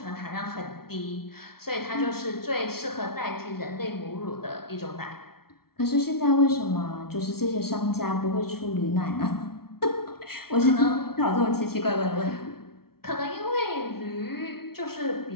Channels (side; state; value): right; late; 0.94 ms